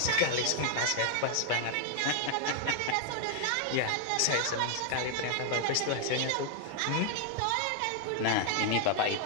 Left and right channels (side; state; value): both; different; correlation 0.00